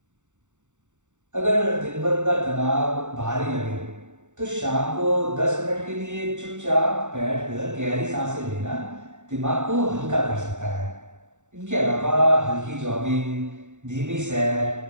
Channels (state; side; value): late; left; 0.84 ms